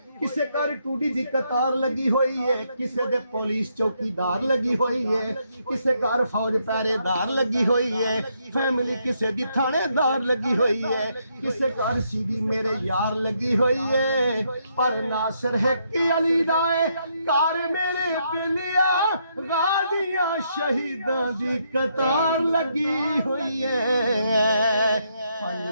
किसे घर टूटी दी कतार लगी हुई है, किसे दे पुलिस चौकीदार लगी हुई है, किसे घर फौज पहरेदार लगी हुई है, फैमिली किसे दी थानेदार लगी हुई है, किसे घर सीधी मेरे यार लगी हुई है। पर नासिर है कि अली दाए कार मेरे बिलिया, गादियां शहीदां दी कतार लगी हुई है।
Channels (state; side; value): inverted; both; correlation -0.76